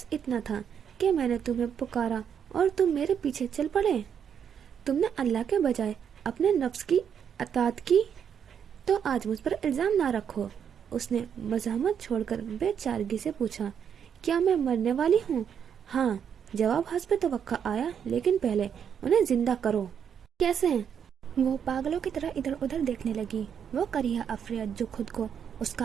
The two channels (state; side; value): quieter; left; 8.0 dB